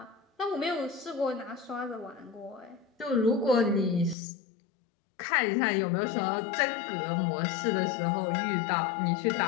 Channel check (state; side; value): drops out; right; at 4.2 s